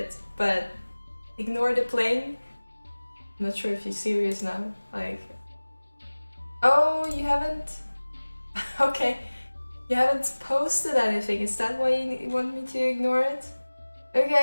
but ignore the pling. I'm not sure if you're serious now. Like, oh, you haven't? Okay, you haven't posted anything. Is that why you want me to ignore it?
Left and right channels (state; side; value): inverted; both; correlation -1.00